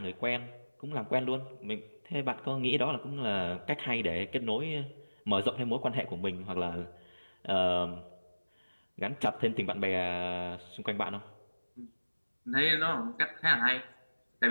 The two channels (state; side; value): inverted; both; correlation -1.00